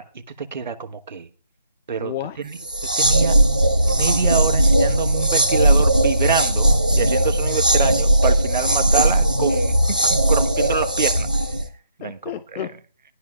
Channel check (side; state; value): both; inverted; correlation -0.71